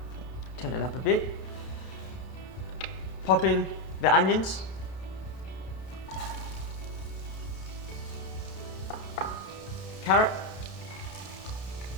Turn it up a bit. Pop in the onions. Carrot.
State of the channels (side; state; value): right; late; 32 ms